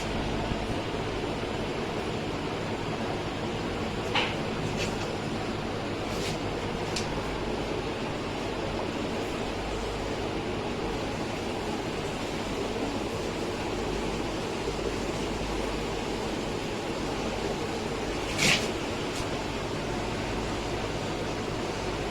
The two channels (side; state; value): both; identical; correlation 1.00